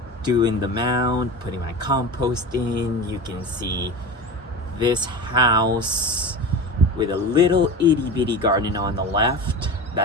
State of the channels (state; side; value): normal; both; correlation 0.29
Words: doing the mound, putting my compost in. You can see this house with a little itty bitty garden on the left.